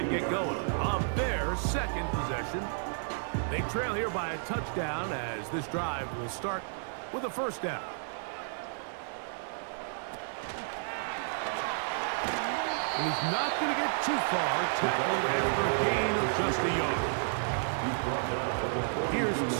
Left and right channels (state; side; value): silent; left; digital silence